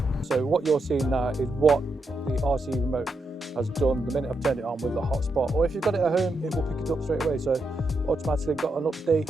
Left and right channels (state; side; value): normal; both; correlation 0.84